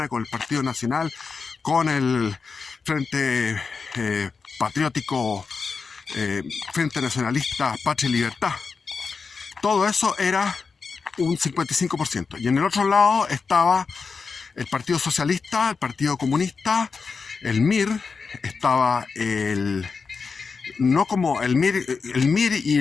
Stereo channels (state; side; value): quieter; right; 5.0 dB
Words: con el Partido Nacional, con el Frente Patriótico, Frente Nacionalista, Patria y Libertad. Todo eso era un 55%. Y en el otro lado estaba el Partido Socialista, el Partido Comunista, el MIR, estaba no como el MIR y